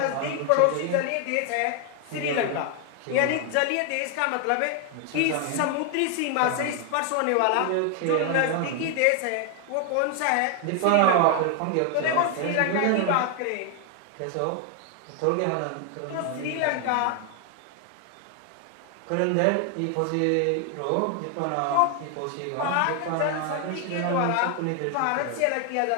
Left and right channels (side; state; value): both; different; correlation 0.00